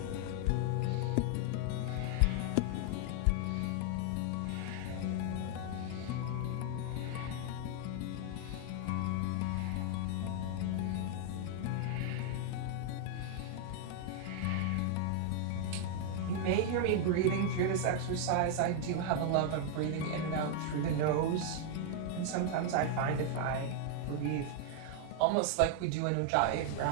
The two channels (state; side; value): different; both; correlation 0.00